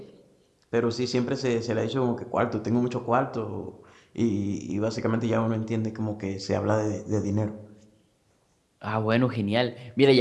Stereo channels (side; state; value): both; identical; correlation 1.00